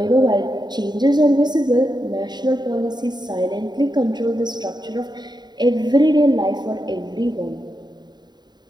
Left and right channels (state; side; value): late; left; 0.21 ms